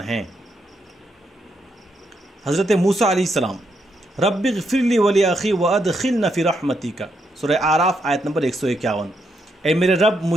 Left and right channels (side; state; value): both; normal; correlation 0.79